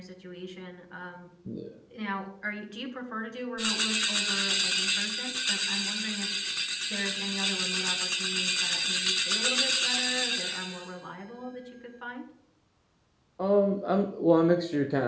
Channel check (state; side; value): identical; both; correlation 1.00